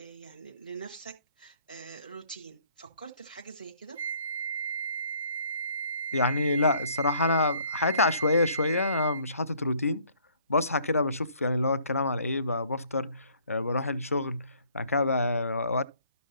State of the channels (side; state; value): both; inverted; correlation -0.61